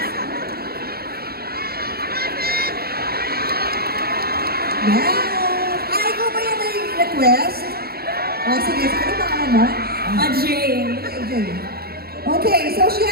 Yes! Ay, ikaw ba yung may request? Sige, ano pangalan mo? Ajay. Okay. Okay, so she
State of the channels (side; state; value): left; late; 0.45 ms